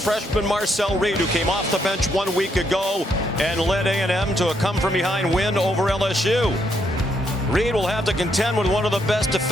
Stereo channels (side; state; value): both; normal; correlation 0.76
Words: Marcel Reed, who came off the bench 1 week ago and led A&M to a come-from-behind win over LSU. Reed will have to contend with one of the best